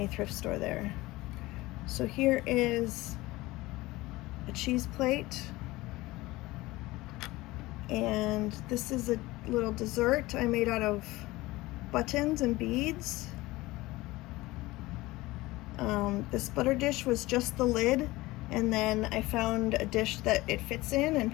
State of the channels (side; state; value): right; quieter; 19.7 dB